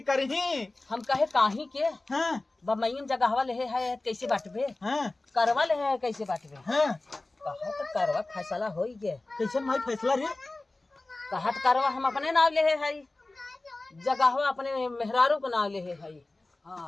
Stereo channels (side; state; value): right; quieter; 3.0 dB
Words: करही। हम कहे काही के हाँ बमैन जगहवा ले है कैसे बांटबे, हाँ करवा ले है कैसे बांटबे। हाँ कहा तो करवा फैसला हो गए। कैसे भाई फैसला रे। कहा तो करवा हम अपने नाव ले है, जगहवा अपने मेहरारू के नाव ले है।